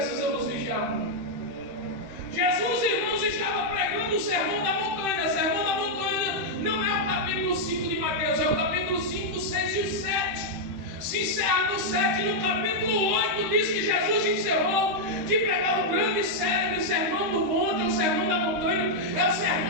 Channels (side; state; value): left; late; 13 ms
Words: vigiar muito. Jesus, irmãos, estava pregando o sermão da montanha. O sermão da montanha não é o capítulo 5 de Mateus, é o capítulo 5, 6 e 7. Se encerra no 7, no capítulo 8 diz que Jesus encerrou de pregar o grande e célebre sermão do monte, ou sermão da montanha. É o